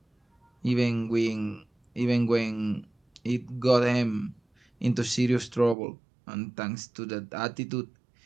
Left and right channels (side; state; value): left; drops out; at 5.8 s